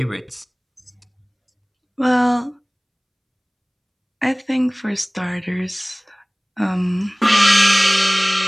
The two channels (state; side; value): identical; both; correlation 1.00